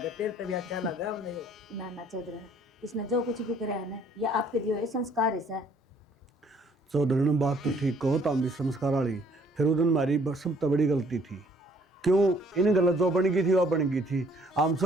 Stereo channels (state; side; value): normal; both; correlation 0.61